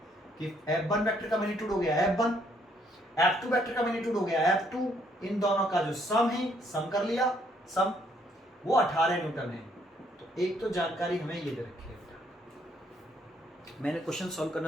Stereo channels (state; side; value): normal; both; correlation 0.68